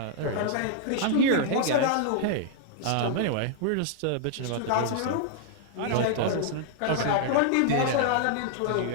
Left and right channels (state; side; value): different; both; correlation -0.01